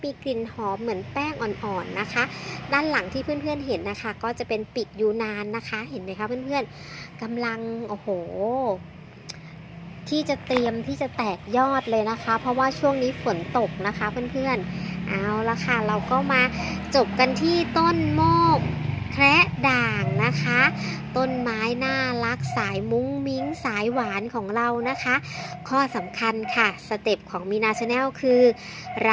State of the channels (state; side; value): identical; both; correlation 1.00